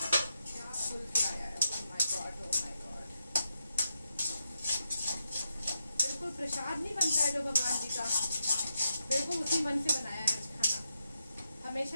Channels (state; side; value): inverted; both; correlation -0.84